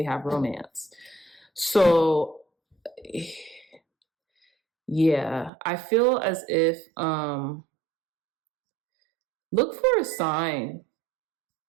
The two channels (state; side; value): drops out; left; at 5.5 s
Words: have romance. So yeah, I feel as if look for a sign